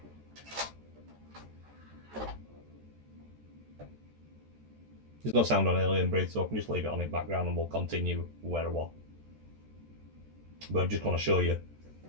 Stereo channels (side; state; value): left; late; 14 ms